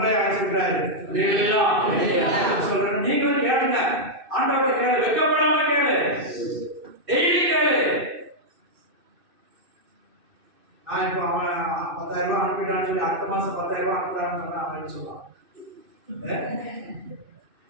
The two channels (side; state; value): left; late; 2.6 ms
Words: அழைச்சிருக்கிறாரு. சொல்றேன், நீங்களும் கேளுங்க, ஆண்டவரை கேளு, வெக்கப்படாம கேளு, டெய்லி கேளு. நான் இப்போ அவன் 10,000 அனுப்பிட்டான்னு சொல்லி அடுத்த மாசம் 10,000 அனுப்புறான்னு சொன்னா அவன் என்ன சொல்லுவான்?